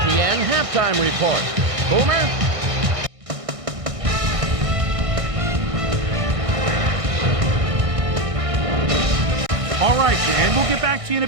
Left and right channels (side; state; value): left; late; 1.6 ms